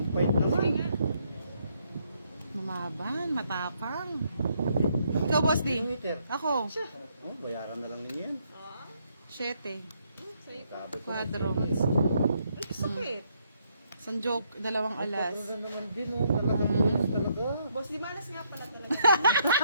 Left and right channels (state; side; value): inverted; both; correlation -0.73